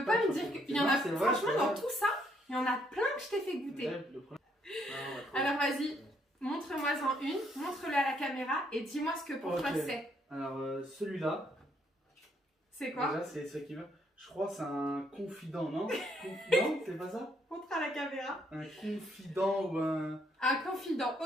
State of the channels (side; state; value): both; normal; correlation 0.70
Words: pas me dire qu'il y en a. Franchement, dans tout ça, il y en a plein que je t'ai fait goûter. Alors vas-y, montre-moi-en une, montre-le à la caméra et dis-moi ce que pour toi c'est. Alors celui-là. C'est quoi? Déjà, c'est ce qui veut. Je crois que c'est un confident, non? Non, c'est pas ça? Montre à la caméra. Un confident ou un... Un confident,